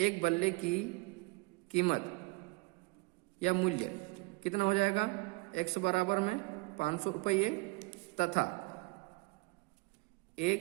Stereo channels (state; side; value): quieter; left; 26.0 dB